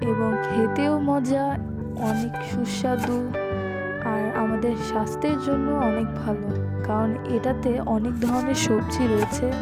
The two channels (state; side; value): identical; both; correlation 1.00